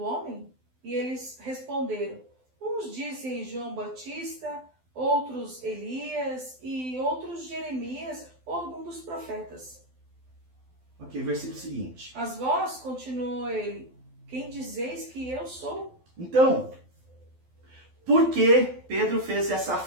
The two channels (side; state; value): left; late; 12 ms